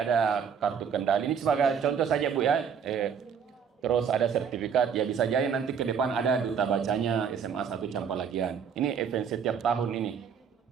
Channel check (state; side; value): quieter; left; 7.1 dB